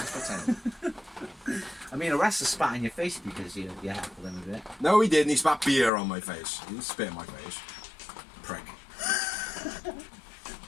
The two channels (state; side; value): drops out; right; at 5.9 s